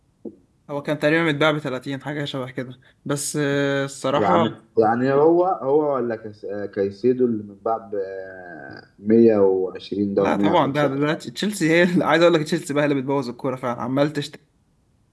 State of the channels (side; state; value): both; identical; correlation 1.00